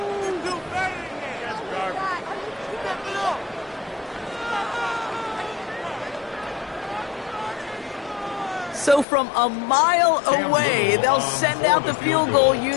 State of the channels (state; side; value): drops out; right; at 9.1 s